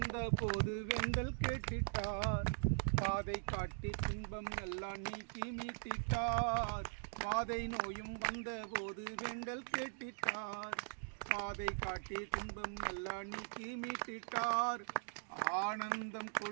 போது வெண்டல் கேட்டிட்டார், பாதை காட்டி துன்பம் எல்லாம் நீக்கி மீட்டிட்டார். வாதை நோயும் வந்த போது வெண்டல் கேட்டிட்டார், பாதை காட்டி துன்பம் எல்லாம் நீக்கி மீட்டிட்டார். ஆனந்தம்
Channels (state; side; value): silent; left; digital silence